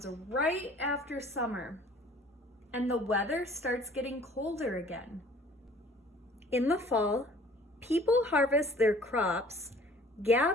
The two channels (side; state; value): both; normal; correlation 0.52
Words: right after summer, and the weather starts getting colder again. In the fall, people harvest their crops,